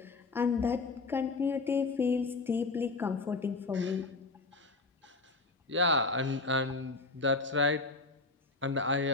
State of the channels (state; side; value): quieter; right; 3.6 dB